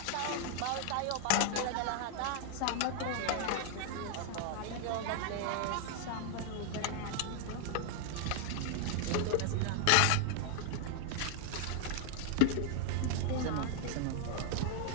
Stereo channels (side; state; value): both; different; correlation 0.00